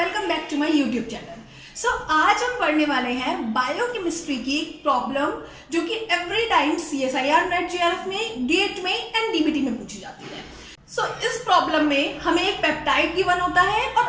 back to my YouTube channel. So आज हम पढ़ने वाले हैं बायोकेमिस्ट्री की एक प्रॉब्लम जो कि एवरी टाइम CSIR-NET JRF में, गेट में एंड DBT में पूछी जाती है। सो इस प्रॉब्लम में हमें एक पेप्टाइड गिवन होता है और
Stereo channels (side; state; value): both; identical; correlation 1.00